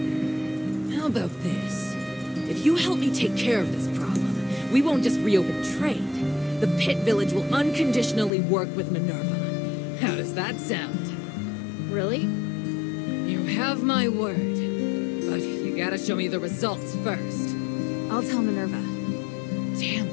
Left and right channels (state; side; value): drops out; right; at 8.3 s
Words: How about this? If you help me take care of this problem, we won't just reopen trade. The Pit Village will unconditionally work with Minerva. How does that sound? Really? You have my word. But you gotta show me the results first. I'll tell Minerva. Damn